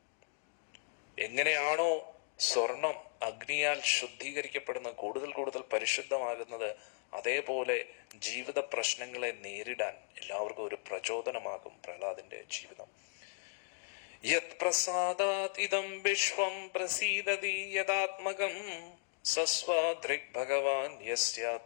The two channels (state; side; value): silent; right; digital silence